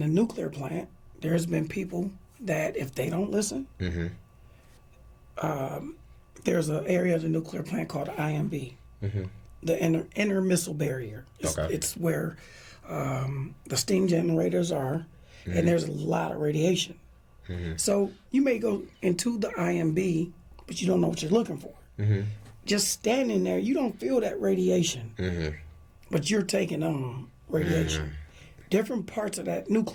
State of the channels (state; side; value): identical; both; correlation 1.00